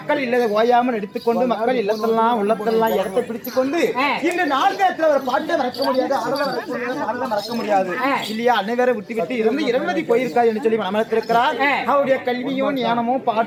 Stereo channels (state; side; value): identical; both; correlation 1.00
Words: இல்லதை ஓயாமல் எடுத்துக்கொண்டு மக்கள் இல்லத்தெல்லாம் உள்ளத்தெல்லாம் இடத்தை பிடிச்சு கொண்டு இந்த நாடகத்துல ஒரு பாட்டை மறக்க முடியாது, ஆடலை மறக்க முடியாது இல்லையா? அனைவரை விட்டு விட்டு இருந்து 20 போயிருக்காது என்று சொல்லி மனத்திருக்கிறார். அவருடைய கல்வியும் ஞானமும்